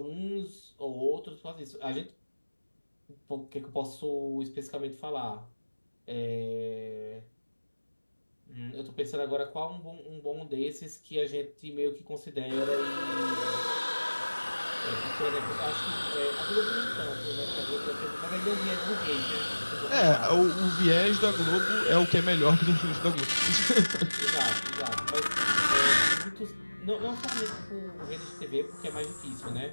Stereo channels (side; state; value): both; inverted; correlation -1.00